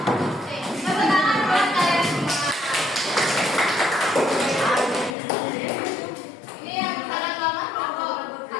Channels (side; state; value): right; drops out; at 5.2 s